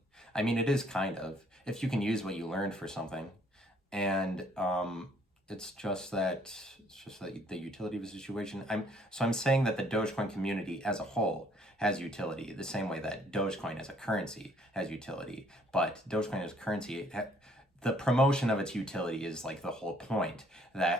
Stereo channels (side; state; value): both; normal; correlation 0.63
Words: I mean, it is kind of, if you can use what you learned for something. And it's just that the utility of a situation. I'm saying that the Dogecoin community as a whole has utility, the same way that Dogecoin as a currency has utility. But Dogecoin as a currency, the promotion of its utility is like the whole point.